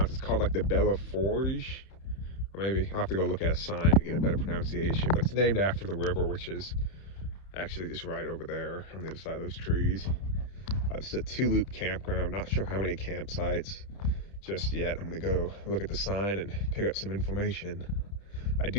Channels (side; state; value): right; late; 31 ms